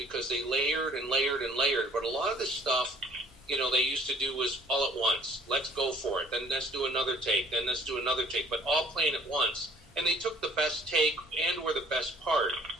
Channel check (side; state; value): both; normal; correlation 0.56